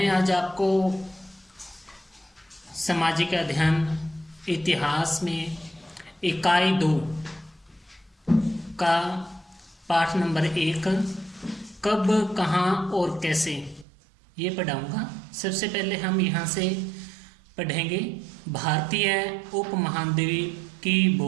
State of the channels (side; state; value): left; drops out; at 13.9 s